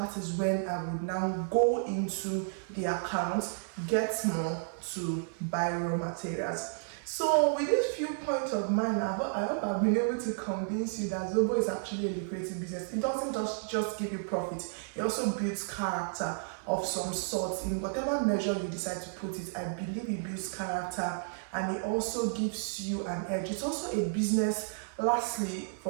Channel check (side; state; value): left; silent; 56 dB below the other